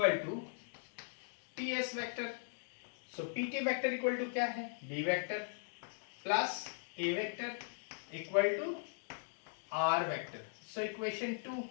to T S vector. So P T vector equal to क्या है, B vector plus A vector equal to R vector. So equation 2,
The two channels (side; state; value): right; silent; digital silence